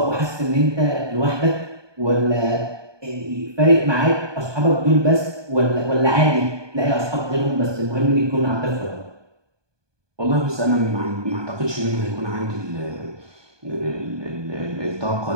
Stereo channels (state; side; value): late; left; 1.2 ms